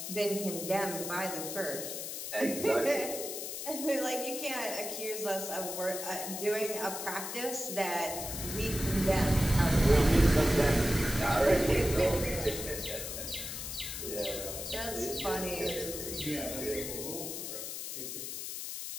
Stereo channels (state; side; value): noise; left; hiss, 6 dB below the sound